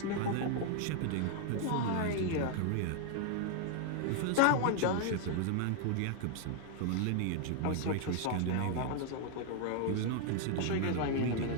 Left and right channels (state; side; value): different; both; correlation 0.00